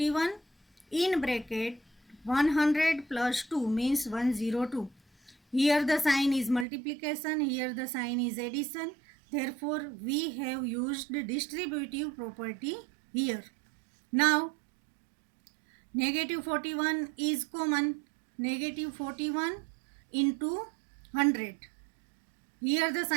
in bracket 100 plus 2 means 102. Here the sign is multiplication, here the sign is addition. Therefore we have used distributive property here. Now negative 41 is common. Negative 41 into 100. Here the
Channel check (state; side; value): drops out; left; at 6.7 s